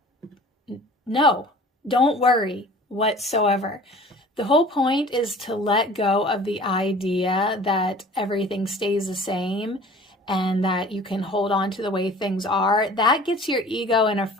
no, don't worry whatsoever. The whole point is to let go of the idea that everything stays the same and that you can hold on to the way things are. That gets your ego in a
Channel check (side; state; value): both; normal; correlation 0.45